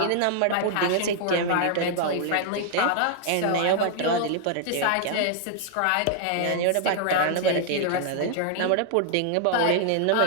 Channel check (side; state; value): both; different; correlation -0.01